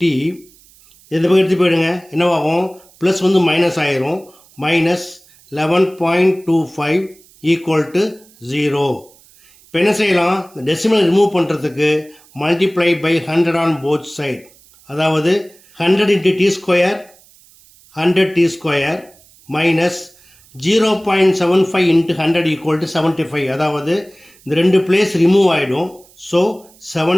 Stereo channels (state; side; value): noise; right; hiss, 28 dB below the sound